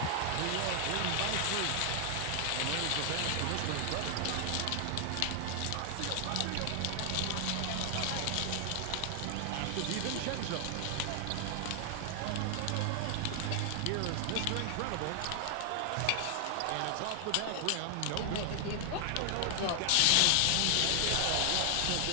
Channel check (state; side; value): different; both; correlation 0.00